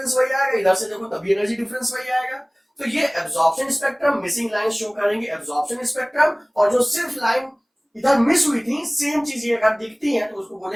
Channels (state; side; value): identical; both; correlation 1.00